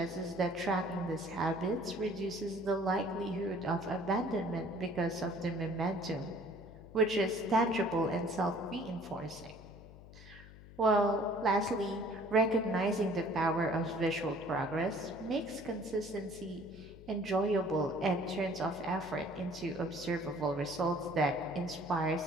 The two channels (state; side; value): noise; left; hum, 18 dB below the sound